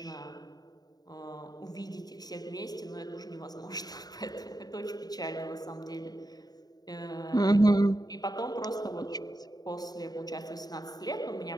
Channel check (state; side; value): late; right; 0.19 ms